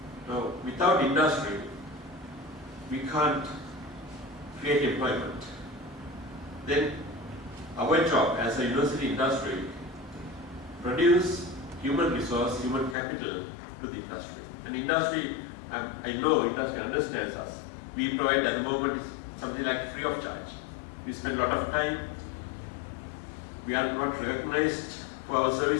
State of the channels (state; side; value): drops out; right; at 13.0 s